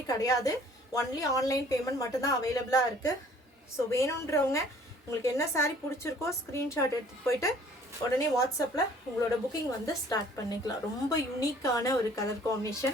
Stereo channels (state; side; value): normal; both; correlation 0.55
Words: கிடையாது, ஒன்லி ஆன்லைன் பேமெண்ட் மட்டும்தான் அவைலபிளாக இருக்குது. ஸோ வேணுன்றவங்க உங்களுக்கு என்ன சாரீ பிடிச்சிருக்கோ ஸ்க்ரீன்ஷாட் எடுத்துகிட்டு போயிட்டு உடனே வாட்ஸ்அப்பில் உங்களோட புக்கிங் வந்து ஸ்டார்ட் பண்ணிக்கலாம். ரொம்ப யூனிக்கான ஒரு கலர்